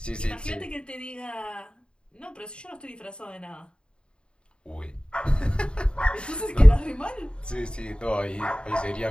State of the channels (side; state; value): right; late; 0.052 ms